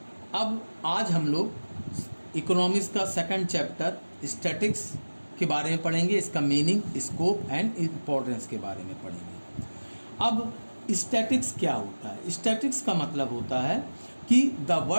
अब आज हम लोग इकोनॉमिक्स का सेकंड चैप्टर स्टैटिक्स के बारे में पढ़ेंगे। इसका मीनिंग, स्कोप एंड इम्पोर्टेंस के बारे में पढ़ेंगे। अब स्टैटिक्स क्या होता है? स्टैटिक्स का मतलब होता है कि the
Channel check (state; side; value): inverted; both; correlation -1.00